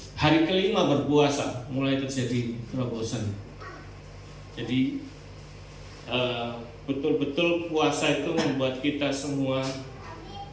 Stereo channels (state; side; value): identical; both; correlation 1.00